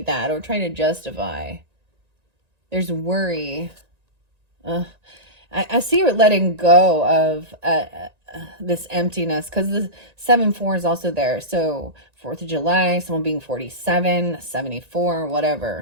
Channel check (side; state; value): left; late; 1.9 ms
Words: that, or trying to justify. There's worry. I see you're letting go of this emptiness, because the 7-4 is also there. So 4th of July, someone being 47, 74,